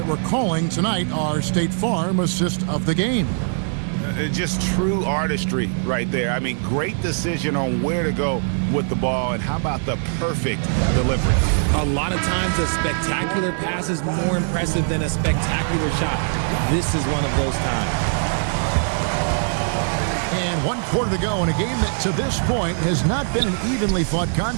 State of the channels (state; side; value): silent; left; digital silence